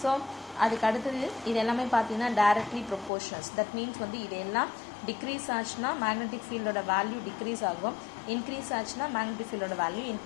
So அதுக்கு அடுத்தது இது எல்லாமே பார்த்தீங்கன்னா directly proportions. That means இதெல்லாம் degrees ஆச்சுன்னா magnetic ஃபீல்டோட value degrees ஆகும், increase ஆச்சுன்னா magnetic ஃபீல்டோட value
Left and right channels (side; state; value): right; drops out; at 3.1 s